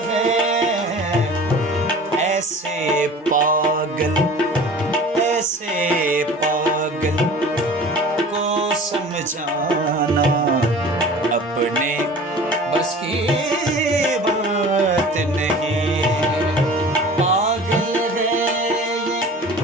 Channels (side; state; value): both; normal; correlation 0.41